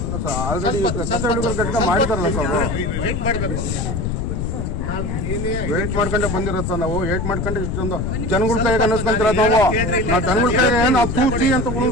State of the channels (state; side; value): noise; left; rumble, 2 dB below the sound